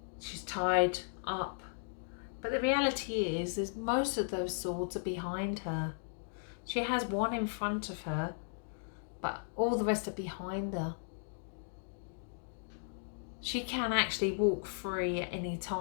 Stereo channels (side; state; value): right; silent; digital silence